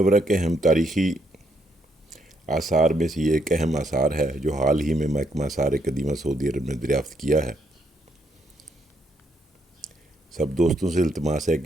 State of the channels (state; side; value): normal; both; correlation 0.75